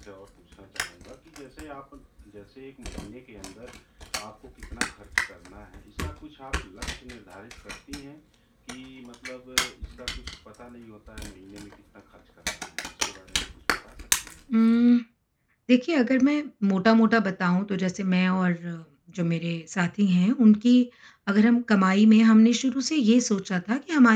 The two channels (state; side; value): identical; both; correlation 1.00